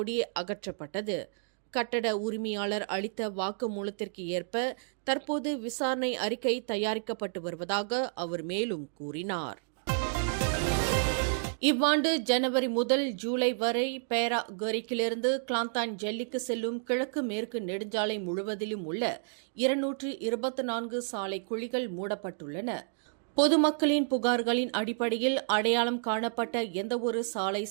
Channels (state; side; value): silent; left; digital silence